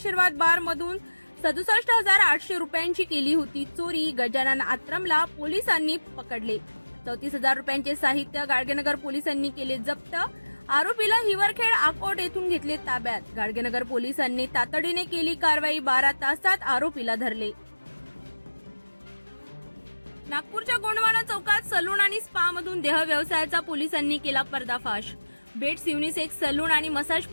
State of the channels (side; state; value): both; inverted; correlation -1.00